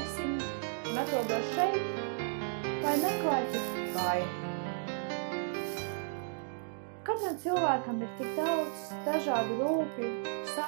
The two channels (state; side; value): silent; left; digital silence